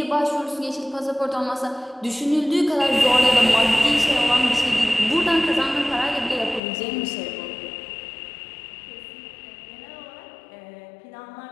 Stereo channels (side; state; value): right; drops out; at 6.6 s